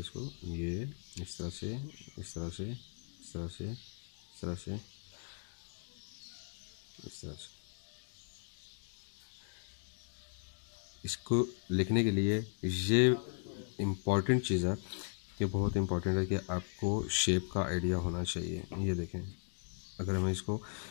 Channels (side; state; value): right; silent; digital silence